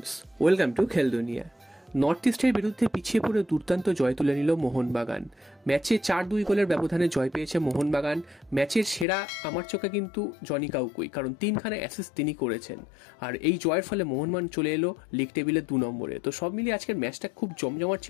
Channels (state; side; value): drops out; right; at 9.1 s